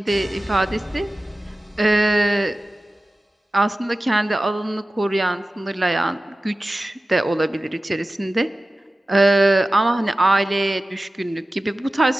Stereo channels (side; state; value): both; normal; correlation 0.96